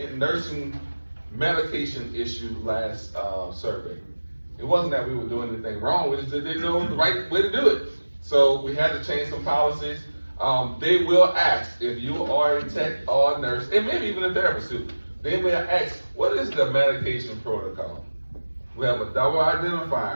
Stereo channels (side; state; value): both; inverted; correlation -1.00